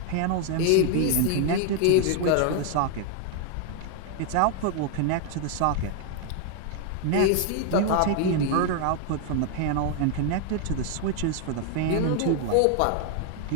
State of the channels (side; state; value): both; different; correlation 0.00